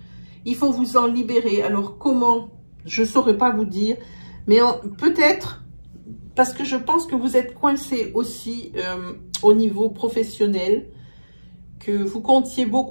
Il faut vous en libérer. Alors, comment? Je ne saurais pas vous dire. Mais peut-être, parce que je pense que vous êtes coincé aussi au niveau professionnel, que vous comptiez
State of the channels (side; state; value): both; inverted; correlation -1.00